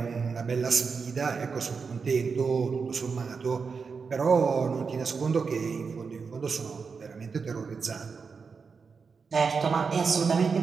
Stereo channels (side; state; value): left; quieter; 5.3 dB